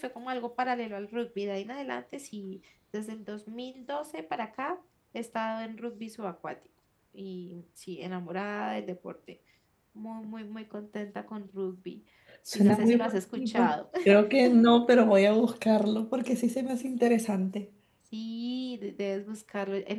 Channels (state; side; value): identical; both; correlation 1.00